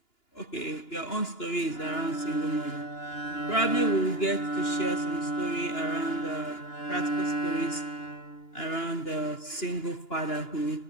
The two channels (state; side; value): late; right; 2.9 ms